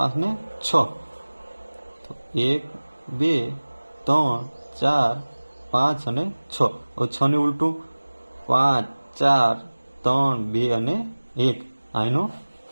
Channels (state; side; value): inverted; both; correlation -1.00